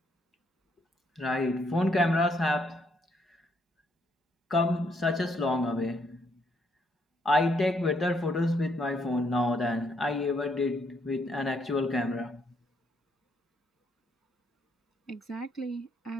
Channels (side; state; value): both; normal; correlation 0.72